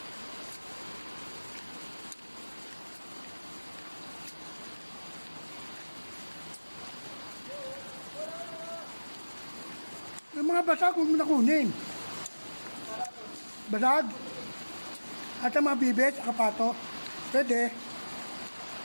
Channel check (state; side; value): inverted; both; correlation -1.00